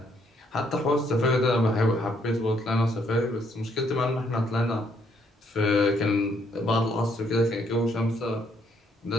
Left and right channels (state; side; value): normal; both; correlation 0.69